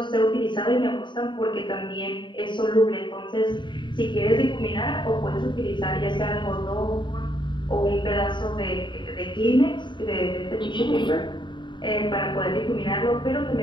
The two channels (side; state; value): right; late; 0.23 ms